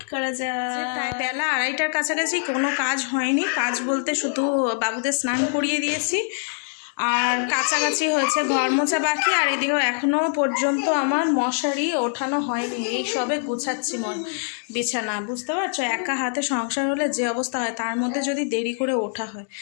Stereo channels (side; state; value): right; silent; digital silence